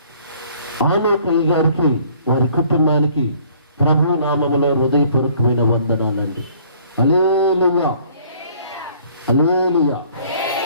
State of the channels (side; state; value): both; inverted; correlation -0.58